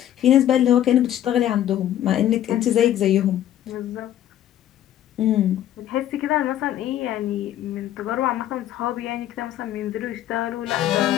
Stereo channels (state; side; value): quieter; right; 11.9 dB